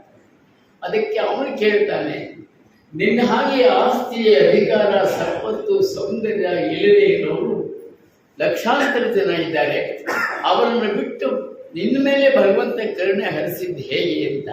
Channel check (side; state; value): both; identical; correlation 1.00